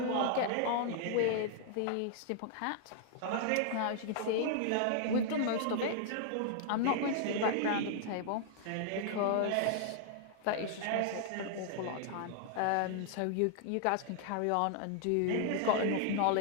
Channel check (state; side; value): different; both; correlation 0.00